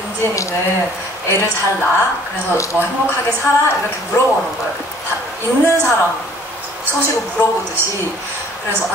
은진이는 애를 잘 낳아? 그래서 뭐 행복하게 살아? 이렇게 물어보는 거예요. 다 있는 사람 소식을 물어보듯이. 그래서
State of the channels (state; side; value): normal; both; correlation 0.56